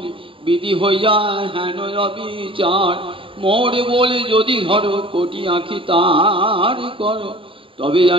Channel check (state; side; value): late; left; 0.25 ms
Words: বিধি হইয়া হেন অবিচার মোরে বলে যদি ধরো কোটি আঁখি তার করো তবে